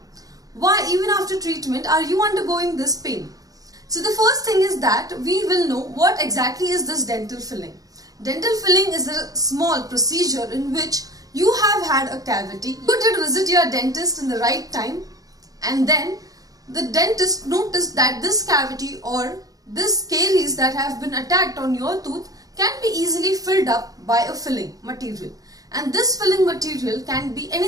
Why even after treatment are you undergoing this pain? So the first thing is that we will know what exactly is this dental filling. Dental filling is a small procedure in which you have had a cavity, you did visit your dentist in the right time, and then the dentist noticed that this cavity or this caries that have been attacked on your tooth can be easily filled up by a filling material. And this filling material can be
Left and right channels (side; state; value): left; late; 0.17 ms